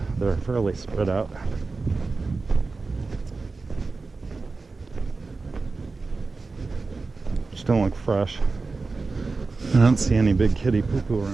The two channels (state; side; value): quieter; left; 3.9 dB